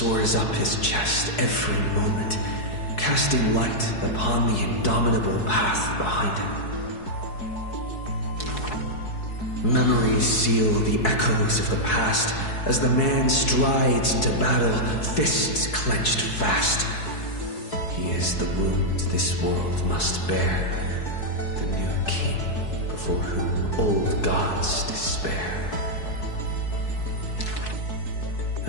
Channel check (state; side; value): late; right; 4.7 ms